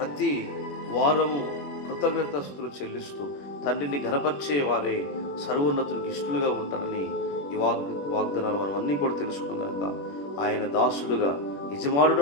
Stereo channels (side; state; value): right; late; 21 ms